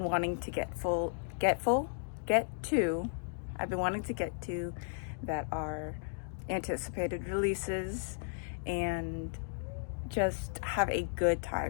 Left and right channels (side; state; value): right; silent; digital silence